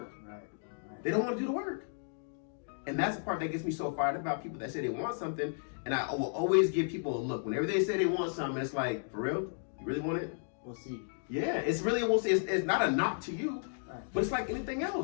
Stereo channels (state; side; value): silent; right; digital silence